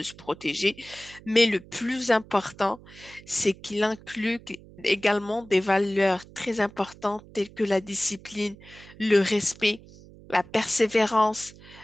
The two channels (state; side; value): noise; right; hum, 21 dB below the sound